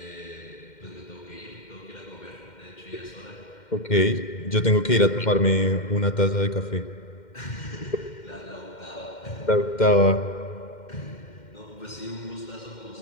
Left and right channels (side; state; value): right; late; 2.1 ms